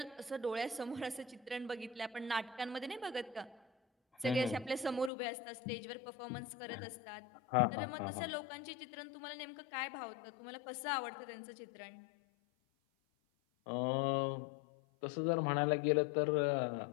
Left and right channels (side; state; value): right; drops out; at 5.1 s